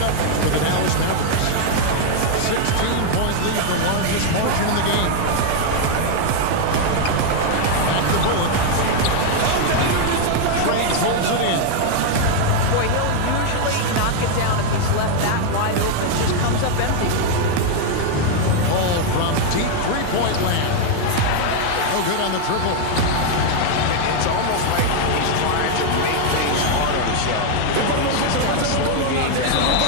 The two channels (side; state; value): both; different; correlation 0.00